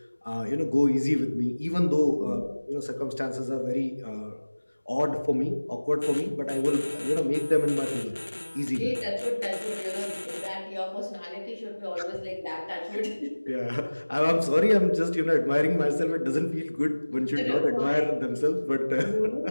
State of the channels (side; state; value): both; inverted; correlation -1.00